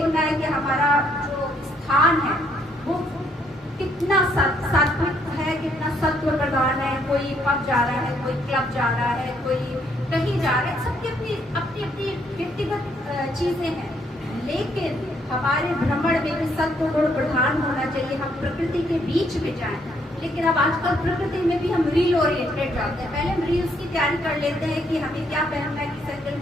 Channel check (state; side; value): normal; both; correlation 0.70